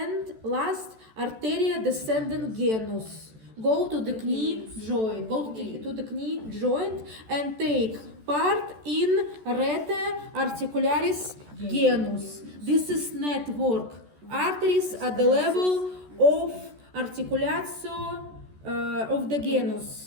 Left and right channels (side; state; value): left; late; 14 ms